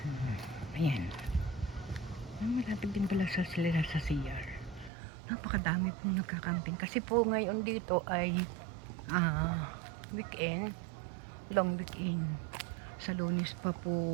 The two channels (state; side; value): drops out; left; at 4.9 s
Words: ayan. Malapit din pala sa sila sa CR. Napakadami pong nagka-camping kasi po ngayon dito ay weekend, long weekend. Sa Lunes pa